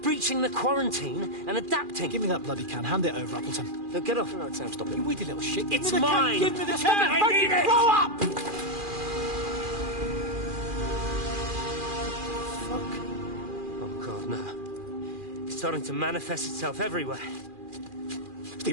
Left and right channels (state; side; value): late; left; 2.4 ms